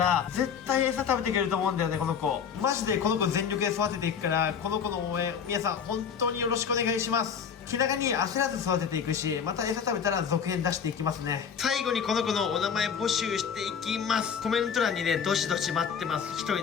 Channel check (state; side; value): quieter; right; 7.1 dB